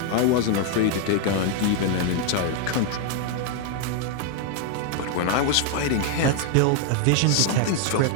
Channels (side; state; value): both; different; correlation 0.00